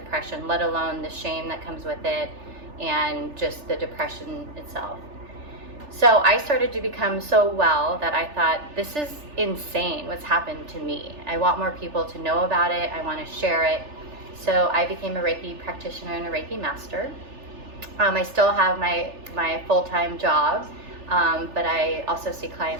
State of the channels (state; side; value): late; left; 3.4 ms